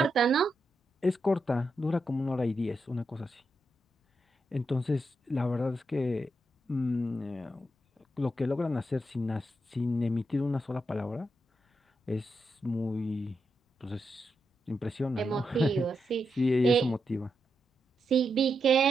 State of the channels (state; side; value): normal; both; correlation 0.84